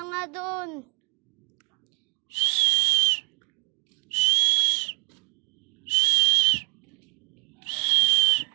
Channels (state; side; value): quieter; left; 35.2 dB